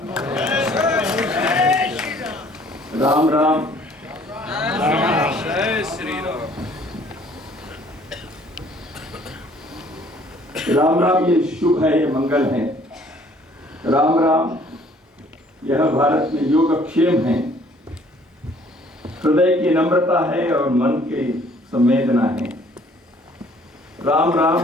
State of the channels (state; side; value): normal; both; correlation 0.58